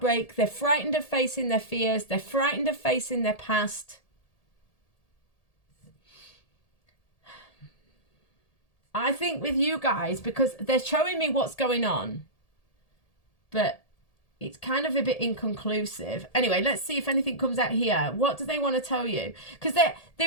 They're frightened of facing their fears. They're frightened of facing their past. I think with you guys, because they're showing me what's going on, but it's kind of a bit inconclusive. Anyway, let's see if anything comes out here. What do they want to tell you? Because they're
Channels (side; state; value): right; late; 1.8 ms